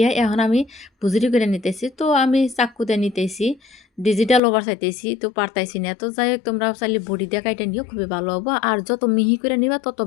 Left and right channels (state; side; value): drops out; right; at 4.4 s